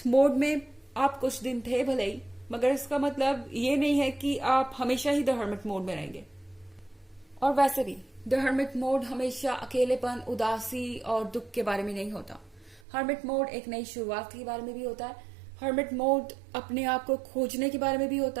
मोड में आप कुछ दिन थे भले ही, मगर इसका मतलब ये नहीं है कि आप हमेशा ही द हर्मिट मोड में रहेंगे। और वैसे भी द हर्मिट मोड हमेशा अकेलेपन, उदासी और दुख के बारे में नहीं होता। हर्मिट मोड एक नई शुरुआत के बारे में भी होता है। हर्मिट मोड अपने आप को खोजने के बारे में भी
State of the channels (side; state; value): left; drops out; at 12.8 s